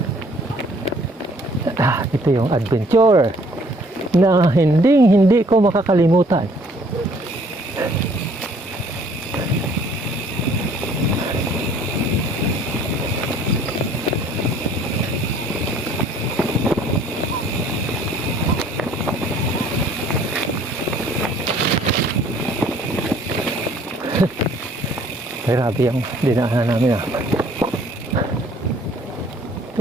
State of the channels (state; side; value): normal; both; correlation 0.58